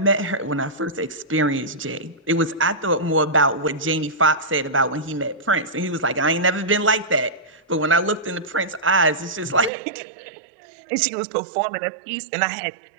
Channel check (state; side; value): drops out; left; at 9.7 s